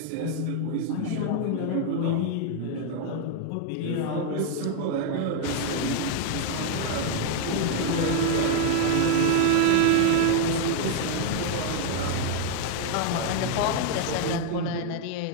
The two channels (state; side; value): different; both; correlation 0.00